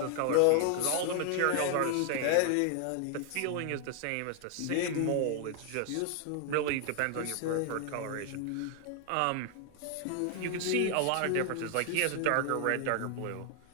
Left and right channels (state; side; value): different; both; correlation 0.00